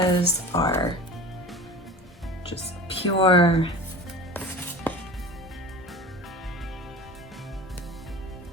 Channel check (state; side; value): normal; both; correlation 0.37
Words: are just pure